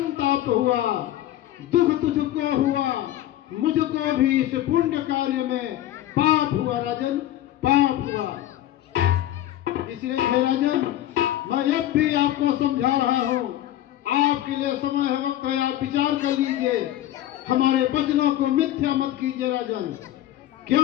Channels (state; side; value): quieter; right; 13.2 dB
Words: हुआ, दुख तुझको हुआ, मुझको भी इस पुण्य कार्य में पाप हुआ राजन, पाप हुआ। इसलिए हे राजन, मैं अब भी आपको समझा रहा हूँ, आपके लिए समय है, वक्त है, आप विचार कर लीजिए, हमारे वचनों को मिथ्या मत कीजिए राजन।